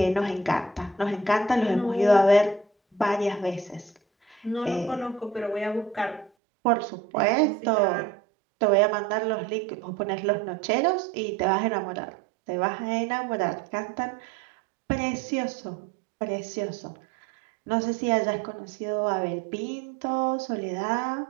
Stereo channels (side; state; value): left; drops out; at 6.3 s